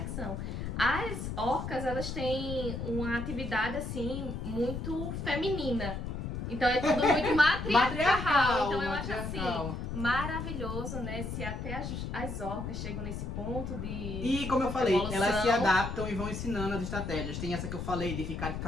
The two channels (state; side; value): noise; left; rumble, 5 dB below the sound